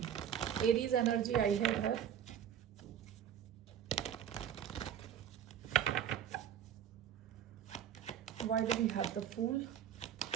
Aries energy I had here. Why do we have the Fool?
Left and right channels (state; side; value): quieter; left; 9.3 dB